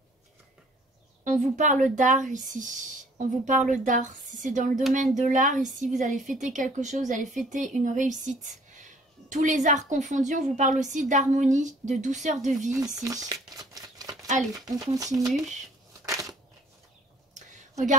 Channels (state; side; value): normal; both; correlation 0.56